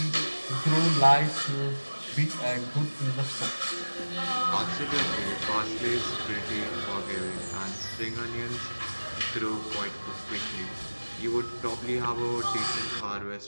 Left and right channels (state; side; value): inverted; both; correlation -1.00